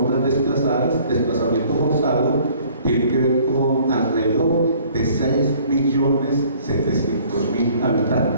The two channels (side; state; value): both; inverted; correlation -0.56